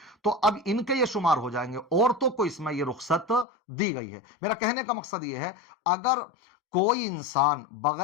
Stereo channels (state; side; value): drops out; right; at 3.5 s